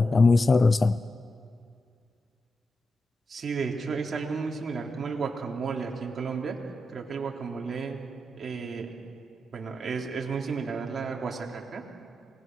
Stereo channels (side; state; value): both; normal; correlation 0.88